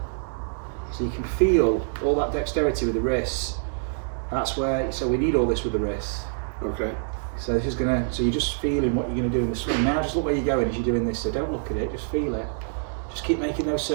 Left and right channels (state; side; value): silent; left; digital silence